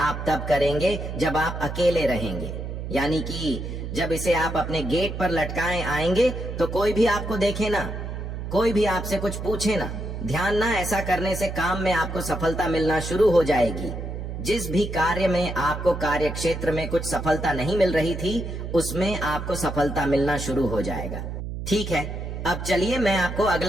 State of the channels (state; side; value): noise; right; hum, 6 dB below the sound